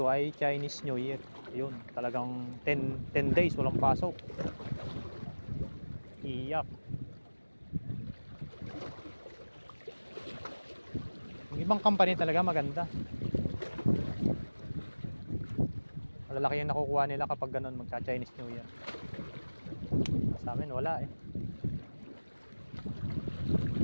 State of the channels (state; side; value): inverted; both; correlation -1.00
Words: ay Chinese New Year. Yun, talagang 10 days walang pasok. Iyak. Yung ibang company talaga maganda. Malalaki yung nakukuha nila kapag ganun magka-Chinese New Year. Sa amin wala eh.